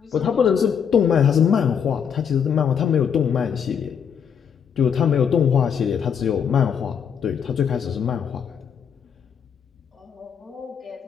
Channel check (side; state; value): right; quieter; 7.5 dB